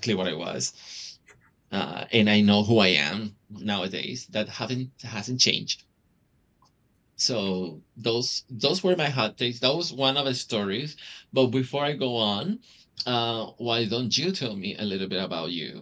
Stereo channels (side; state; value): both; identical; correlation 1.00